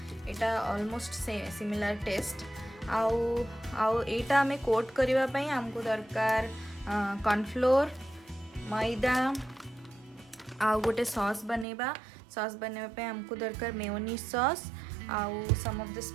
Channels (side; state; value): left; drops out; at 11.7 s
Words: यहाँ ऑलमोस्ट सिमिलर टेस्ट। आउ एटा आमे कोट करने आमको दरकार कॉर्नफ्लोर, मैदा, आउ गोटे सॉस बनेबा। सॉस बनवाई आमको दरकार मेयोनीज सॉस, आउ some of the